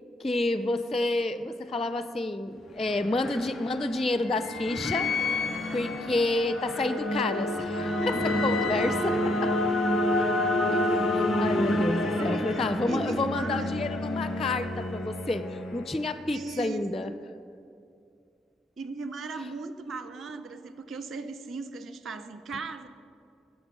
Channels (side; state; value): both; normal; correlation 0.71